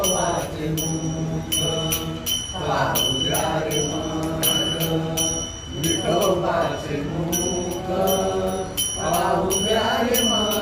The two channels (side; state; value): both; identical; correlation 1.00